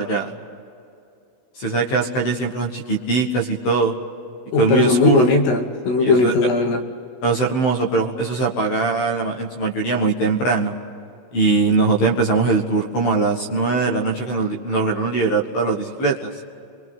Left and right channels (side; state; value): right; late; 16 ms